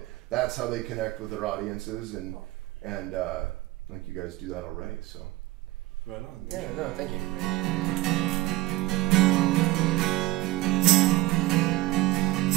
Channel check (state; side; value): quieter; left; 17.6 dB